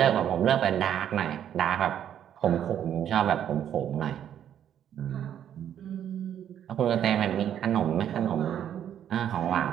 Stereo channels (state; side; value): quieter; left; 9.9 dB